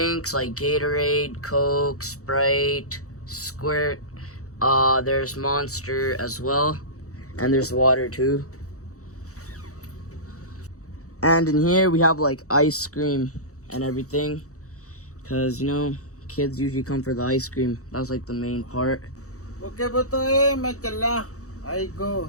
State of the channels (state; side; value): late; right; 0.65 ms